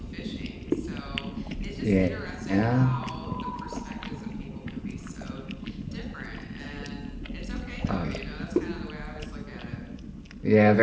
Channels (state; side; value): identical; both; correlation 1.00